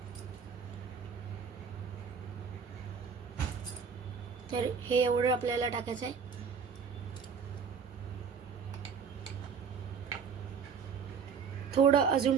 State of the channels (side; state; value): left; quieter; 6.3 dB